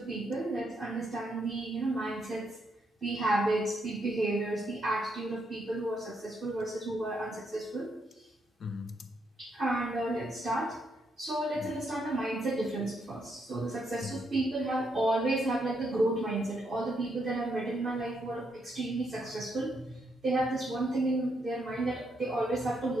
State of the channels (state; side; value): normal; both; correlation 0.77